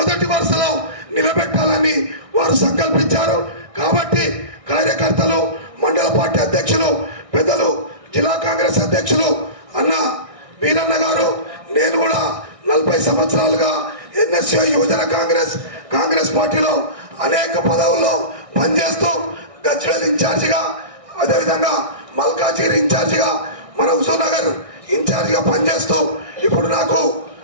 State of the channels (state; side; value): late; left; 1.6 ms